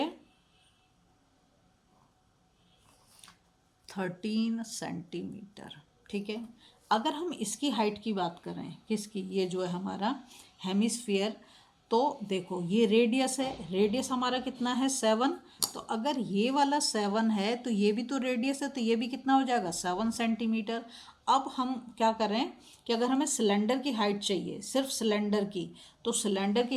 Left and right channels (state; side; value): identical; both; correlation 1.00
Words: 13 सेंटीमीटर। ठीक है, अगर हम इसकी हाइट की बात करें, किसकी, ये जो है हमारा हेमिस्फीयर, तो देखो ये रेडियस है, रेडियस हमारा कितना है 7। तो अगर ये वाला 7 है तो ये भी तो रेडियस है, तो ये भी कितना हो जाएगा 7 सेंटीमीटर। अब हम क्या करें कि अगर हमें सिलेंडर की हाइट चाहिए, सिर्फ सिलेंडर की, तो सिलेंडर